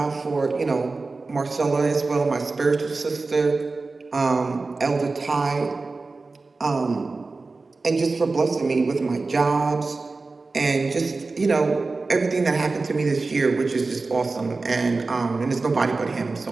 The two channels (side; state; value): left; quieter; 3.7 dB